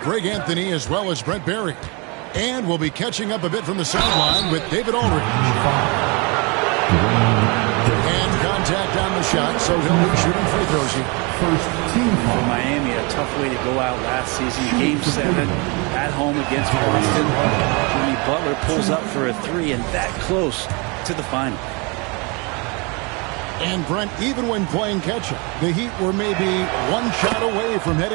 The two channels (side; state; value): left; quieter; 29.9 dB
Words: Greg Anthony as well as Brent Barry. And we'll be catching up a bit from the sideline with David Aldridge. And contact on the shot, so he'll be shooting free throws here. First team for Miami, a tough way to go out last season. Game 7 at home against Boston. Jimmy Butler pulls up for a 3 and that close to the final. And Brent, even when playing catch-up, the Heat were maybe one shot away from